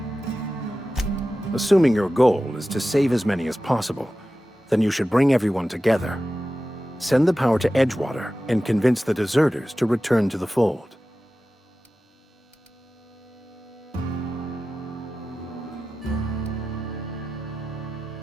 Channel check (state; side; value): normal; both; correlation 0.94